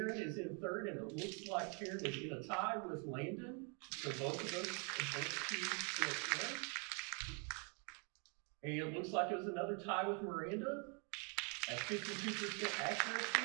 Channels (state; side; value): quieter; left; 37.3 dB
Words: is in third, and it looks like Taryn is in a tie with Landon. So both of us advance to next round. And it looks like it was another tie with Miranda at 52%